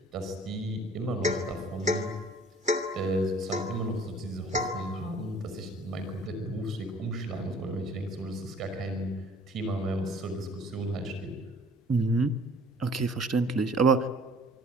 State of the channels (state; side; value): normal; both; correlation 0.53